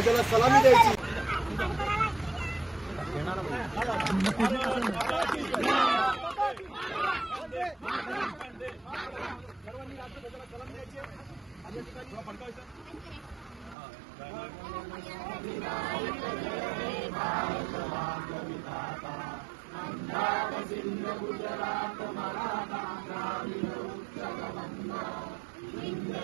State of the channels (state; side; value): drops out; left; at 13.8 s